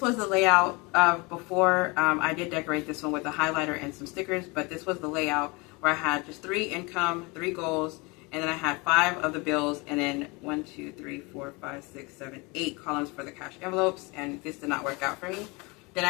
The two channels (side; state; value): right; quieter; 27.0 dB